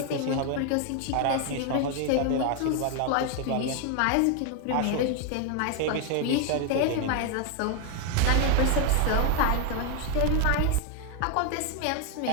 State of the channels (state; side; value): different; both; correlation 0.01